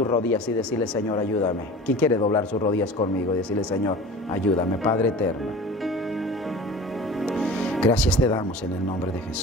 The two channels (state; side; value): normal; both; correlation 0.38